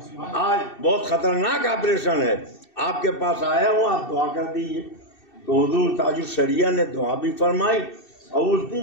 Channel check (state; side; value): late; right; 2.7 ms